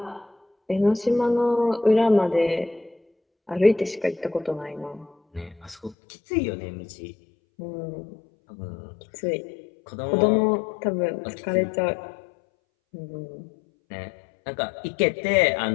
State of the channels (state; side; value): drops out; right; at 6.0 s